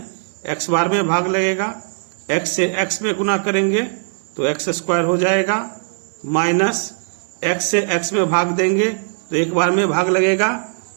x बार में भाग लगेगा। x से x में गुना करेंगे तो x² हो जाएगा। माइनस x से x में भाग देंगे तो 1 बार में भाग लगेगा।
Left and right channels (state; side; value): silent; left; digital silence